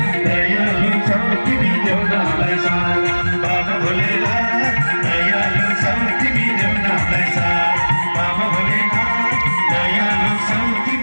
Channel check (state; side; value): inverted; both; correlation -1.00